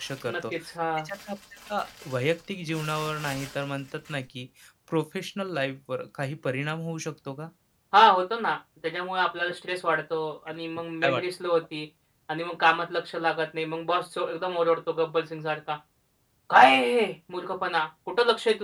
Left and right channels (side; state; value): both; identical; correlation 1.00